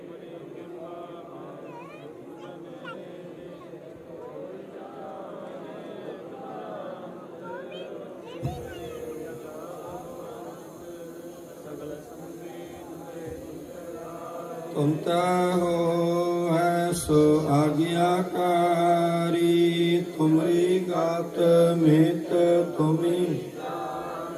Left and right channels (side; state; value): both; identical; correlation 1.00